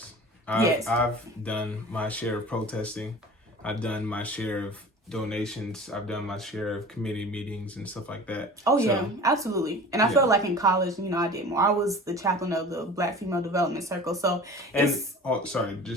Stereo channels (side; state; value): both; normal; correlation 0.40